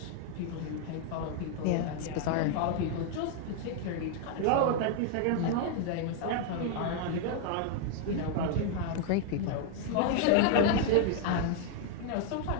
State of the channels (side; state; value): both; different; correlation 0.00